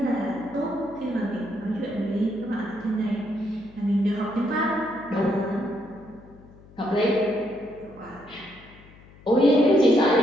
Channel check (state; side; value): noise; left; hum, 23 dB below the sound